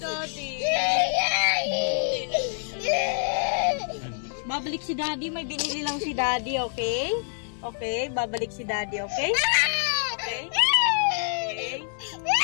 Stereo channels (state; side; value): silent; right; 61 dB below the other